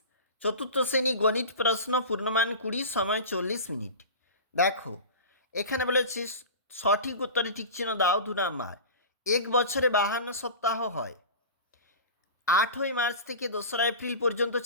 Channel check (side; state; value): both; inverted; correlation -0.32